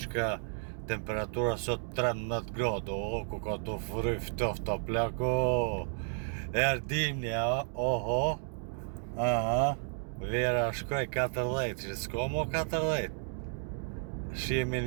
ka temperatura sot 13 gradë, ku ka të fryj ftofta plako. Erdimni, oho, vera shkoj 14, që s'ka mo 14. Shihemi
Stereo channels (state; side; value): silent; left; digital silence